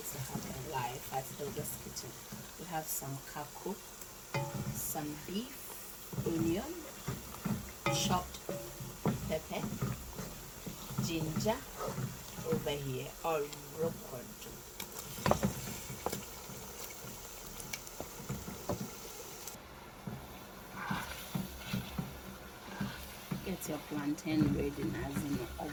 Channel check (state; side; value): identical; both; correlation 1.00